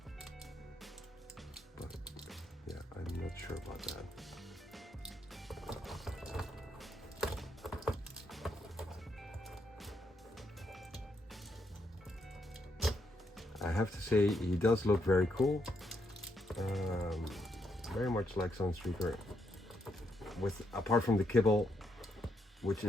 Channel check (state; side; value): normal; both; correlation 0.78